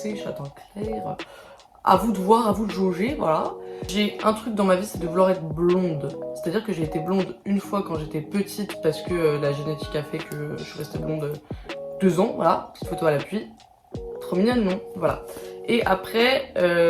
châtain clair. À vous de voir, à vous de jauger, voilà. J'ai un truc dans ma vie, c'est de vouloir être blonde. C'est-à-dire que j'ai été blonde une fois quand j'étais petite parce que la génétique a fait que je suis restée blonde 2 ans, voilà. Petite photo à l'appui. Trop mignonne, non? Voilà. Et après,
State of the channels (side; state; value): both; identical; correlation 1.00